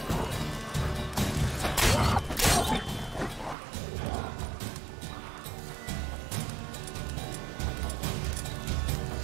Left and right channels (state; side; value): drops out; left; at 3.6 s